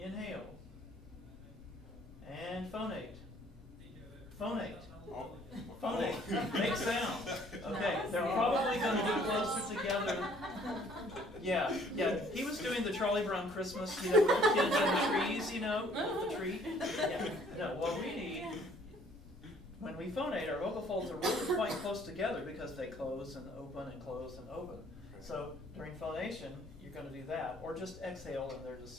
And phonate. Phonate. Phonate. Make sound. Okay, they're probably going to be closer together. Yeah. He was doing the Charlie Brown Christmas, with the kids and the trees, the tree. Yeah. No, what we need, when we phonate, our vocal folds are really quite close together because they close and open and close and open. So during phonation, you're going to do that, or just exhale and they're just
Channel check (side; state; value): both; normal; correlation 0.59